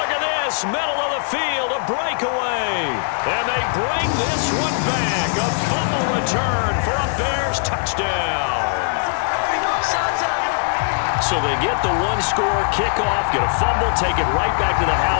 at this, middle of the field, a breakaway. And they bring this one back. A fumble return for a Bears touchdown. So they get the 1-score kickoff, get a fumble, take it right back to the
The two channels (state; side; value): silent; right; digital silence